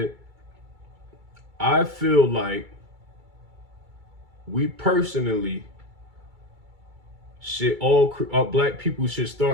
I feel like we personally should black people should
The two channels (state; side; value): late; left; 2.3 ms